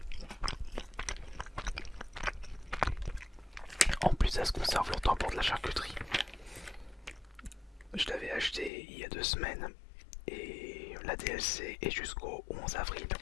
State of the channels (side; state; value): right; drops out; at 8.7 s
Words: En plus, ça se conserve longtemps pour de la charcuterie. Je l'avais acheté il y a 2 semaines et la DLC est jusqu'au 11 avril